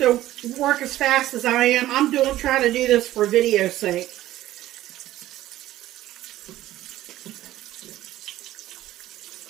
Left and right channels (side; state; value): left; quieter; 14.5 dB